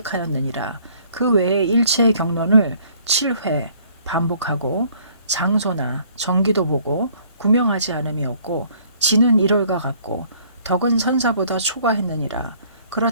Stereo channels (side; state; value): both; inverted; correlation -0.60